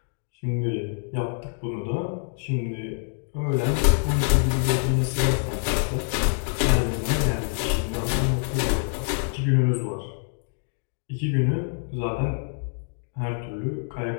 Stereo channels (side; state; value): right; silent; 60 dB below the other